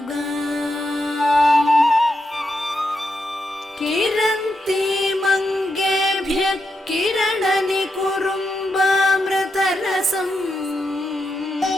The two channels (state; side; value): normal; both; correlation 0.84